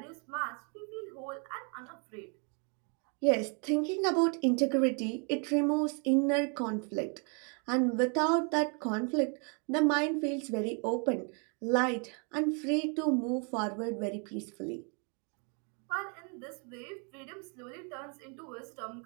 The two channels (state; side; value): quieter; left; 37.4 dB